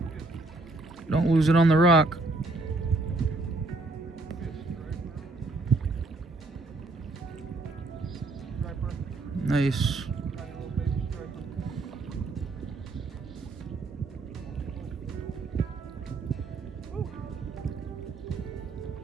Don't lose it on the rock. Nice.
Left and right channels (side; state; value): left; quieter; 3.3 dB